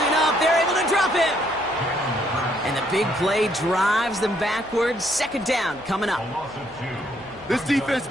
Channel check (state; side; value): noise; right; hum, 26 dB below the sound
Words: up. They're able to drop him. And the big play drives them backwards. 2nd down coming up. This defense has